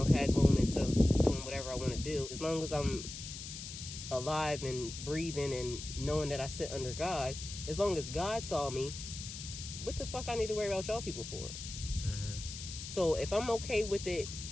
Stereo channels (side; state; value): left; noise; hiss, 9 dB below the sound